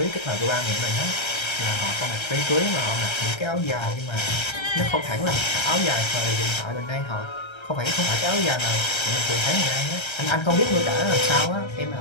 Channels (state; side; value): late; right; 1.3 ms